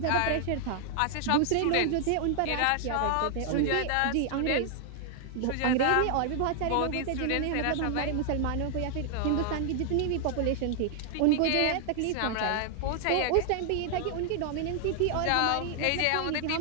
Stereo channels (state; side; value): different; both; correlation 0.00